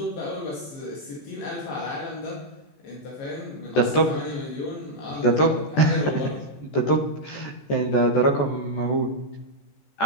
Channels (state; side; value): late; right; 14 ms